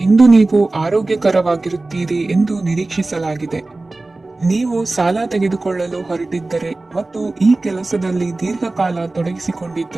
ಇಂದು ನೀವು ಆರೋಗ್ಯಕರವಾಗಿರುತ್ತೀರಿ ಎಂದು ನಿರೀಕ್ಷಿಸಲಾಗಿದೆ. ನೀವು ಸಾಲ ತೆಗೆದುಕೊಳ್ಳಲು ಹೊರಟಿದ್ದರೆ ಮತ್ತು ಈ ಕೆಲಸದಲ್ಲಿ ದೀರ್ಘಕಾಲ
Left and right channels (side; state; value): left; quieter; 3.1 dB